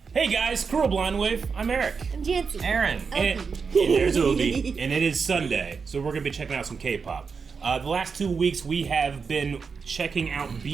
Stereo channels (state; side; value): quieter; left; 5.4 dB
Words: Hey guys, Cruel Blind Wave. I'm Eric. I'm Janci Aaron. And there's Obi. And it is Sunday, so we're gonna be checking out some K-pop. The last 2 weeks we have been checking out